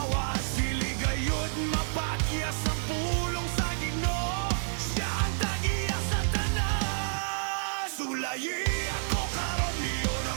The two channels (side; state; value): left; silent; digital silence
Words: awas. Dili gayud mapakyas ang pulong sa Ginoo, siya ang tagiya sa tanan. Sulayi ako karon niyo